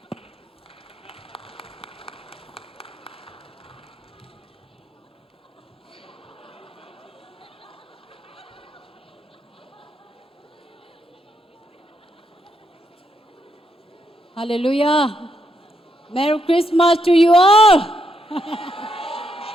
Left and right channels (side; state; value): both; normal; correlation 0.78